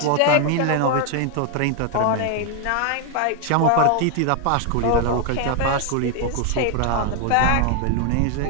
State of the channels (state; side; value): different; both; correlation 0.00